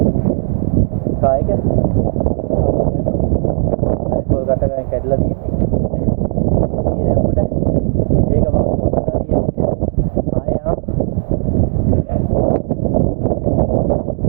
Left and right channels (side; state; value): left; silent; digital silence